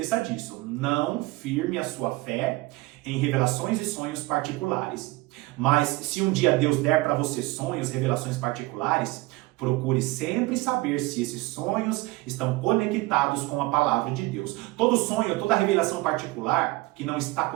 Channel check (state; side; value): quieter; left; 21.2 dB